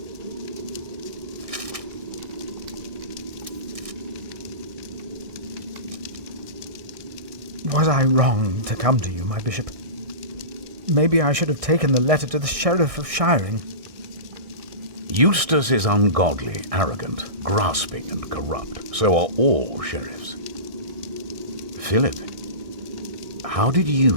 Was I wrong to come to you, my bishop? Maybe I should have taken the letter to the Sheriff of Shiring. Eustace is ungodly, arrogant, grasping and corrupt. So are all sheriffs. Philip, how did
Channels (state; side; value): late; left; 1.6 ms